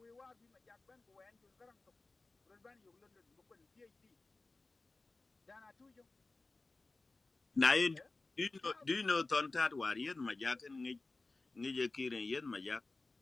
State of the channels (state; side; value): quieter; right; 3.4 dB